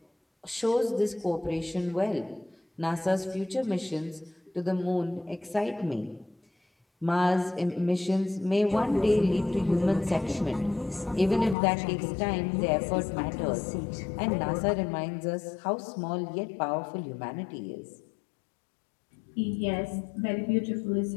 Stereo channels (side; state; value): right; drops out; at 11.6 s